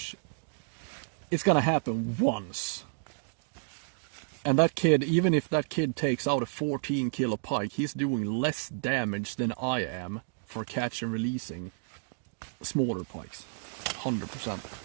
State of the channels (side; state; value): left; silent; digital silence